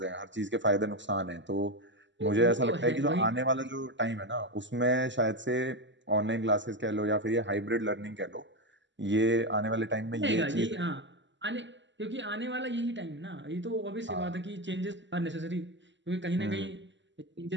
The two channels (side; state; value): left; late; 0.54 ms